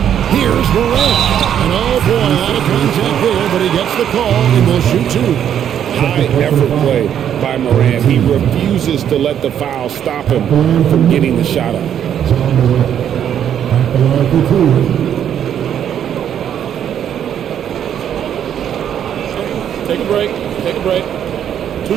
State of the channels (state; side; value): quieter; left; 9.5 dB